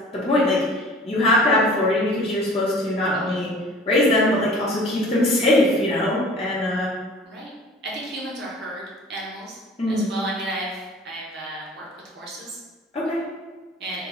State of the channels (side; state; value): both; normal; correlation 0.46